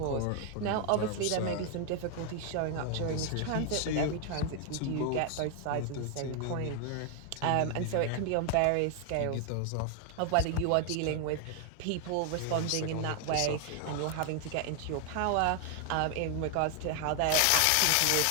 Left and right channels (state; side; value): different; both; correlation 0.00